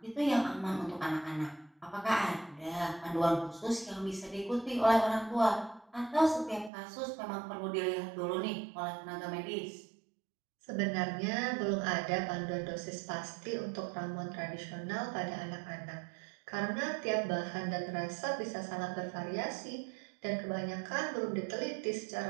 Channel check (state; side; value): drops out; left; at 6.7 s